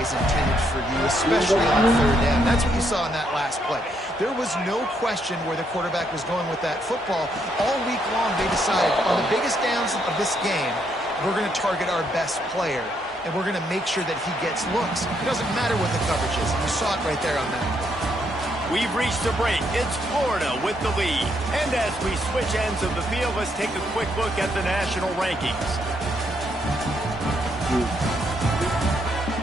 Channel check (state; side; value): normal; both; correlation 0.75